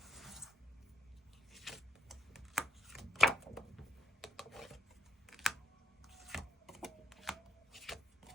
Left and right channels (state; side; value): normal; both; correlation 0.77